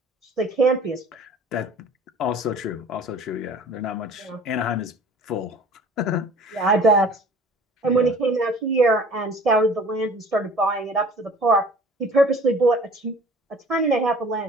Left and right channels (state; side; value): normal; both; correlation 0.47